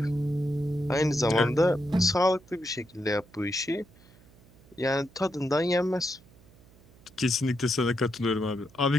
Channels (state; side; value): noise; right; hum, 26 dB below the sound